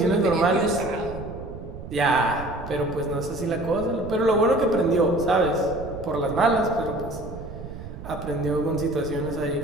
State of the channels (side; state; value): right; noise; rumble, 12 dB below the sound